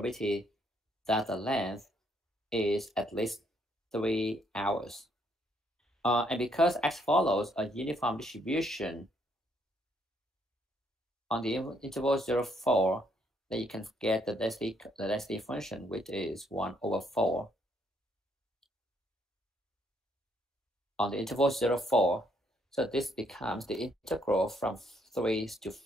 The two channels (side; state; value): both; normal; correlation 0.71